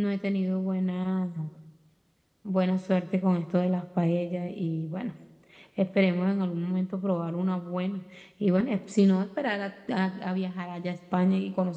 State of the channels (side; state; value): both; identical; correlation 1.00